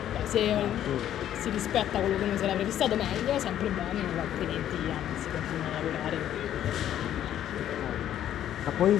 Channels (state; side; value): quieter; right; 11.2 dB